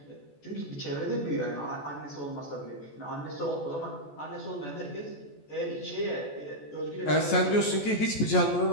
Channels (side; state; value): right; late; 14 ms